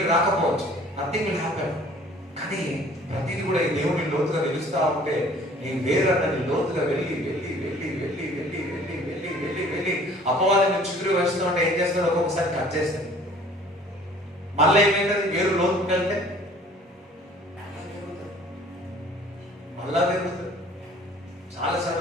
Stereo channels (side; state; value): both; normal; correlation 0.52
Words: రాకపోవచ్చు, నథింగ్ విల్ హ్యాపెన్. కానీ ప్రతిదీ కూడా ఈ దేవుడిని లోతుగా తెలుస్తా ఉంటే నీ వేరన్నది లోతుగా వెళ్ళి వెళ్ళి వెళ్ళి వెళ్ళి వెళ్ళి వెళ్ళి వెళ్ళి వెళ్ళి వెళ్ళి అపవాదాన్ని చుట్టూ వేస్తూ ఉంటే ఏం చేస్తాడు? ఒక్కొక్కసారి కట్ చేస్తాడు. మళ్ళీ ఏమైతుంది? వేరు లోతుకు వెళ్తే మళ్ళా పెరుగుతుంది. చాలాసార్లు